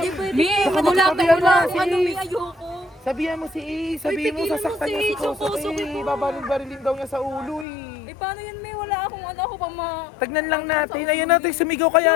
pwede. Baka Wala magsabihan mo si ano, Ace. may ayoko. Sabihan mo si Ace, sabihin mo tigilan mo sasaktan si niya si Ace, yung Kosuke Kosuke. ko. Babaril-barilin daw niya sa ulo eh. Eh, paano yan, May? Wala akong ako pa Tagnan lang natin, ayun natin, sumigaw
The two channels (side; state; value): right; drops out; at 7.7 s